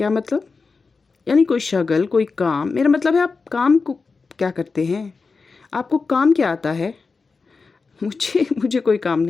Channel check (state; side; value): quieter; right; 4.5 dB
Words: मतलब? यानी कोई शगल, कोई काम? मेरा मतलब है आप काम को क्या करते हैं? आपको काम क्या आता है? मुझे कोई काम